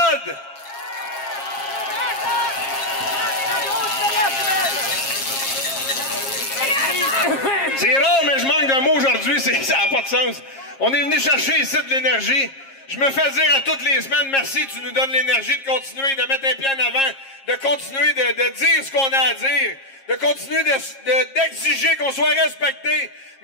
C'est rare, mais je manque d'un mot aujourd'hui, ça n'a pas de sens. On est venu chercher ici de l'énergie. Je me fais dire à toutes les semaines, merci, tu nous donnes l'énergie de continuer, de mettre un pied en avant, de continuer de dire ce qu'on a à dire, de continuer d'exiger qu'on soit respecté.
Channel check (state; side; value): late; right; 7.4 ms